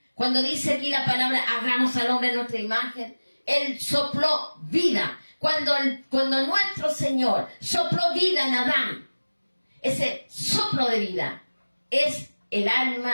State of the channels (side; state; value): both; inverted; correlation -1.00